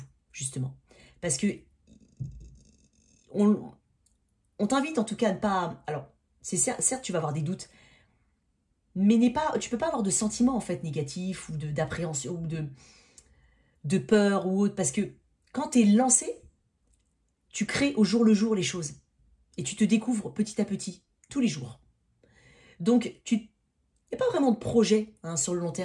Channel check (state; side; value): identical; both; correlation 1.00